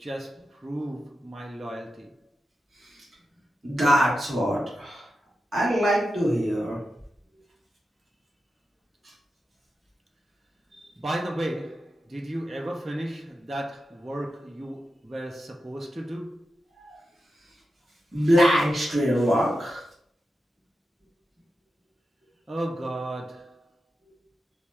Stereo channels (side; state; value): both; normal; correlation 0.90